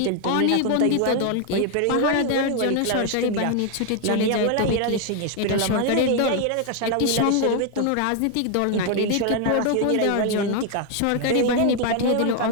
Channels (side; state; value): both; different; correlation 0.00